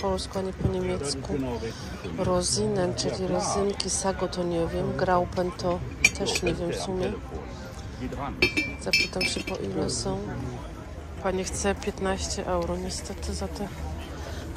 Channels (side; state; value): both; identical; correlation 1.00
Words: ani po niemiecku. Rosinen, czyli rezynki, Sago to nie wiem, Graupen to też nie wiem w sumie. Zapytam się, po ile są. Pani chce 15 euro niestety za te